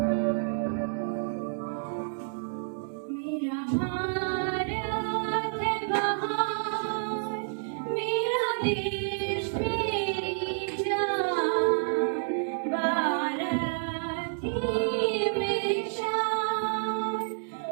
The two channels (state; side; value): silent; left; 58 dB below the other